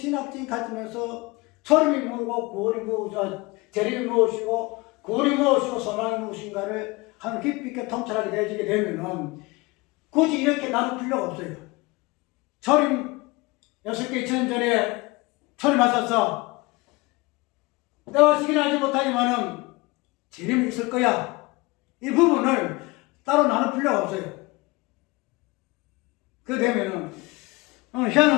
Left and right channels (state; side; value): quieter; right; 23.8 dB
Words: 관점에서 초림이 뭐고 구원이 무엇이고 재림이 무엇이고 구원이 무엇이고 소망이 무엇인가를 한 깊이 있게 통찰하게 되어지게 되면은 굳이 이렇게 나눌 필요가 없어요. 초림 6개 2000년 전에 초림하셔서 때와 시기는 알지 못하지만은 재림이 있을 거야. 이 부분을 따로 나눌 필요가 없어요. 그 되면은